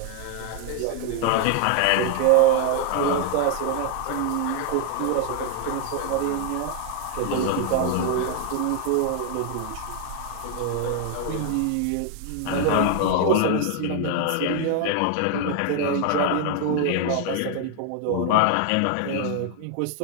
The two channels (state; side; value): different; both; correlation 0.00